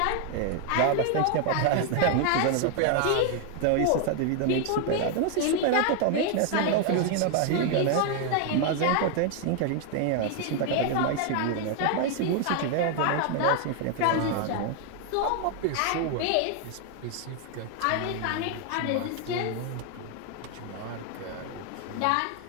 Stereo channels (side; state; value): both; different; correlation 0.00